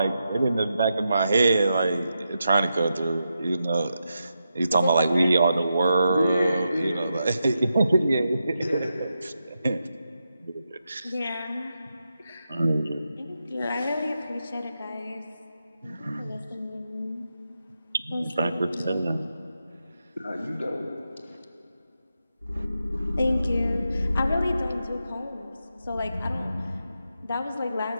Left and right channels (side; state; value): both; inverted; correlation -0.86